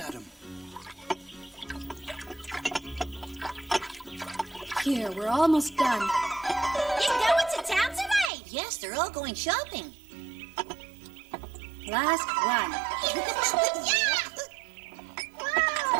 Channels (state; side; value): drops out; left; at 8.3 s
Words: Here, we're almost done. You going to town today? Yes, they're all going shopping. Last one. Yeah!